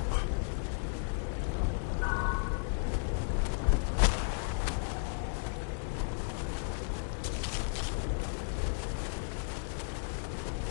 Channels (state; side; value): silent; right; digital silence